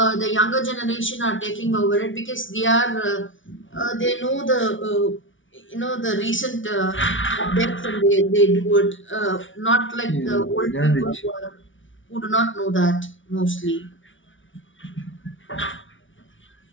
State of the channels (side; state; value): right; late; 0.56 ms